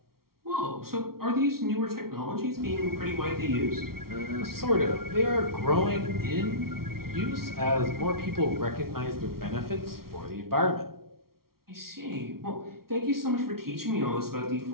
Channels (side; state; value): left; late; 0.94 ms